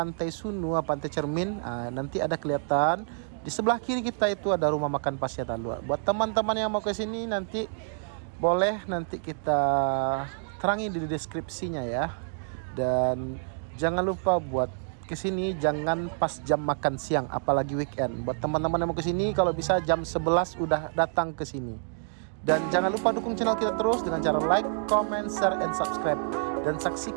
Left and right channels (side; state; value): left; silent; digital silence